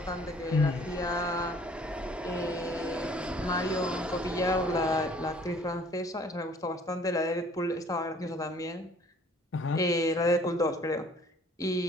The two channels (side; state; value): both; normal; correlation 0.56